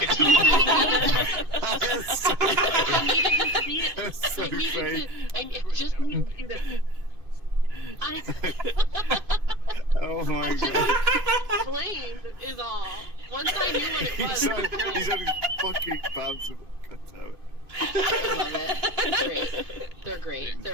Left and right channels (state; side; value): late; left; 2.6 ms